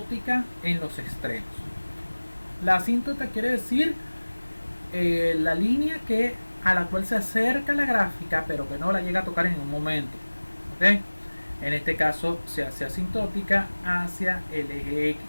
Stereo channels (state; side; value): inverted; both; correlation -1.00